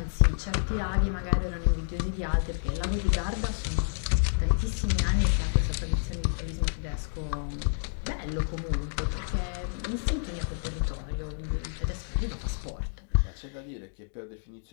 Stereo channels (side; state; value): right; silent; digital silence